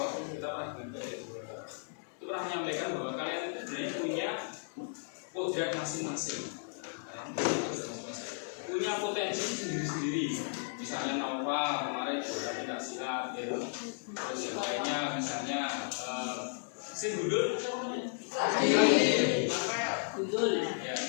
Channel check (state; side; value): silent; right; digital silence